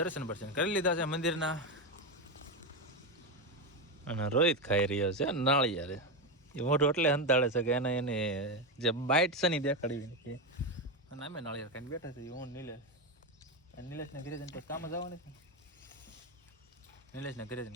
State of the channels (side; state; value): both; normal; correlation 0.12